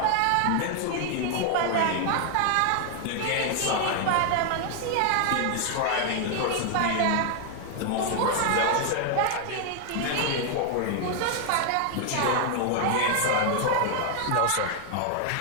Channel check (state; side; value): different; both; correlation 0.00